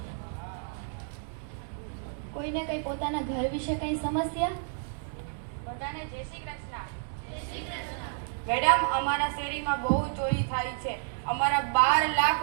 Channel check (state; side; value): silent; left; digital silence